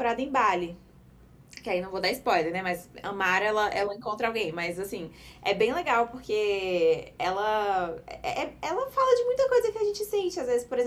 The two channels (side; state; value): both; identical; correlation 1.00